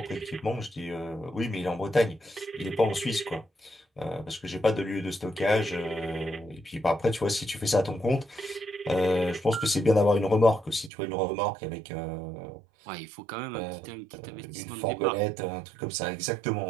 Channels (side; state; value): left; drops out; at 10.9 s